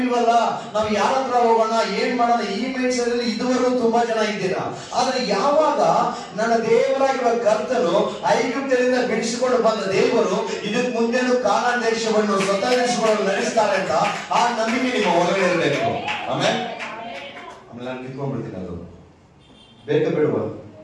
ಇಲ್ವಲ್ಲ, ನಾವು ಯಾರ ಹತ್ರ ಹೋಗೋಣ, ಏನ್ ಮಾಡೋಣ? ಈ ಮೈಂಡ್ ಸೆಟ್ ಅಲ್ಲಿ ಇದುವರೆಗೂ ತುಂಬಾ ಜನ ಇದ್ದೀರಾ. ಆದ್ರೆ ಯಾವಾಗ ನನ್ನ ದೇವರಾಗಿರುವ ಕರ್ತನು ಐಗುಪ್ತದಿಂದ ಬಿಡಿಸಿಕೊಂಡು ಬಂದ ದೇವರು ಇದಕ್ಕೆ ಮುಂದೆನೂ ಕಾನಾನ್ ದೇಶವನ್ನು ಸ್ವತಂತ್ರಿಸಿಕೊಂಡು ನಡೆಸ್ತಾರೆ ಅಂತ ಆ ನಂಬಿಕೆ ನಿಮ್ಮ ಒಳಗಡೆ ಇರಬೇಕು. ಆಮೇಲೆ ನಾನು ಕಿತ್ಕೊಂಡ್ಬಿಡ್ತೀನಿ. ಅದು ಬೇಕಾ ಬೇಡವಾ?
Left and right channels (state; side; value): identical; both; correlation 1.00